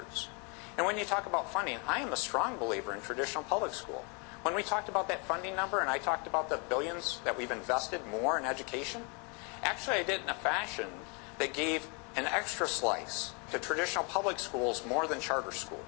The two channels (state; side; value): quieter; right; 33.8 dB